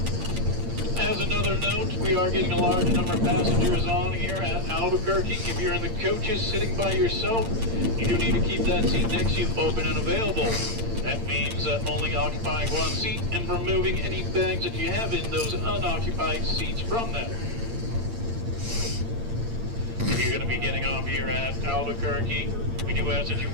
as another note, we are getting a large number of passengers on here at Albuquerque. If you're in the coaches sitting by yourself, you do need to keep that seat next to you open and available. That means only occupying one seat and removing any bags that you have in those unoccupied seats from them. If you're going to be getting off here at Albuquerque, we do ask that you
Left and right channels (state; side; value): late; left; 8.8 ms